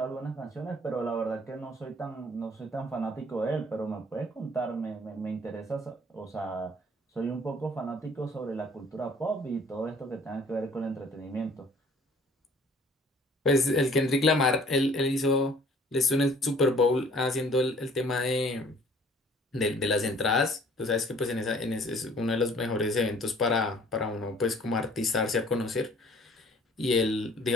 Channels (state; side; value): normal; both; correlation 0.55